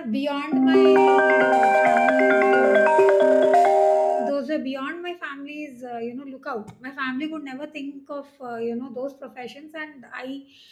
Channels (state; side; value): identical; both; correlation 1.00